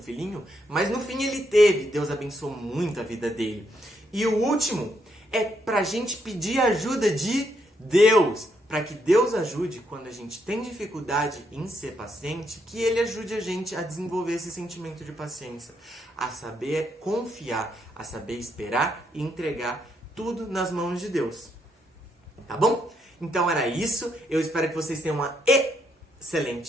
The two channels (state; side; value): normal; both; correlation 0.76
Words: Mas no fim ele teve. Deus abençoou muito a vida dele. E o último é pra gente pedir ajuda de Deus. Para que Deus ajude quando a gente tem dificuldade em ser paciente, que Ele ajude a gente a desenvolver esse sentimento de paciência, a saber confiar, a saber esperar e entregar tudo nas mãos de Deus. Tá bom? Então era isso. Eu espero que vocês tenham uma